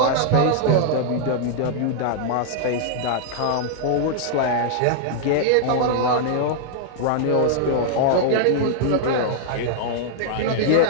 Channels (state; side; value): different; both; correlation -0.01